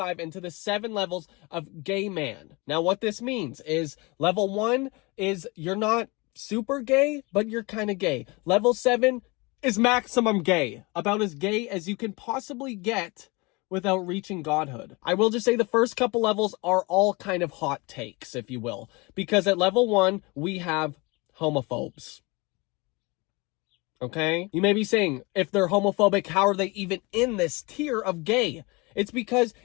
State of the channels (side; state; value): right; quieter; 26.2 dB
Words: into the 7 levels of gay man. Now, what this means is level 1 is you're not super gay, but you're kind of gay. Level 7 is maximum gay. About as gay as you can possibly get without reaching godhood. I will just say the first couple levels are all kind of hot takes, if you will. Because at level 1, we have homophobes. Okay? You may be saying, if they're homophobic, how are they even in this tier of gay? It's because